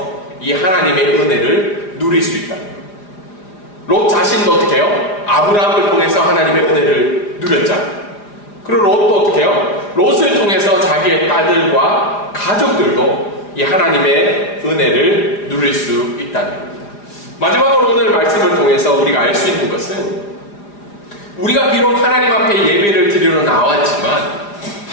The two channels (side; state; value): right; late; 4.9 ms